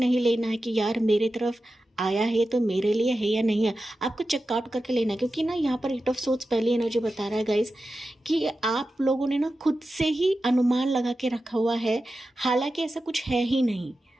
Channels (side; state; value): both; normal; correlation 0.92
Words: लेना है कि यार मेरे तरफ आया है तो मेरे लिए है या नहीं है, आपको चेकआउट करके लेना है। क्योंकि ना यहाँ पर 8 ऑफ सोर्ड्स पहली एनर्जी बता रहा है गाइस कि आप लोगों ने ना खुद से ही अनुमान लगा के रखा हुआ है, हालांकि ऐसा कुछ है ही नहीं।